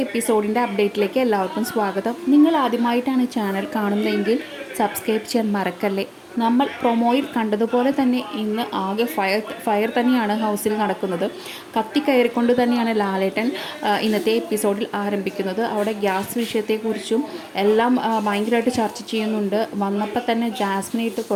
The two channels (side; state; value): both; identical; correlation 1.00